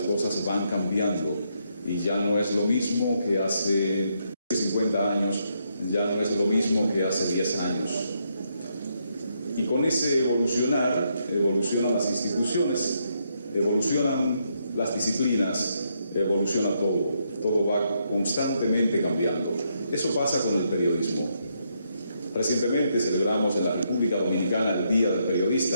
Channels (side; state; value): both; inverted; correlation -0.77